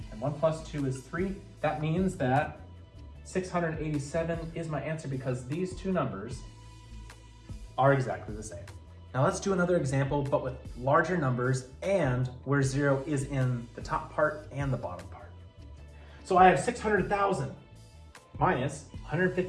and 1 plus 2 is 3. That means that 687 is my answer because these two numbers are exactly the same. Now let's do another example, but with larger numbers and where 0 is in the top part and the bottom part. So I have 600,000 minus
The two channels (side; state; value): both; identical; correlation 1.00